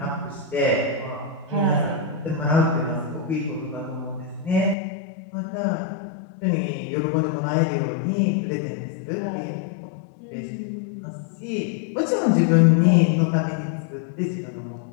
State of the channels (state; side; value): drops out; right; at 4.8 s